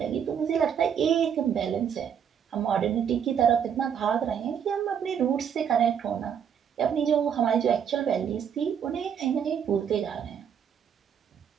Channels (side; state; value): left; quieter; 8.1 dB